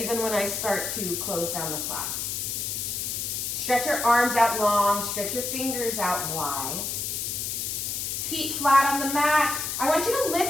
when I start to close down the class. Stretch your arms out long, stretch your fingers out wide. Feet flat on the mat. I want you to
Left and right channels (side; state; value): left; noise; hiss, 2 dB below the sound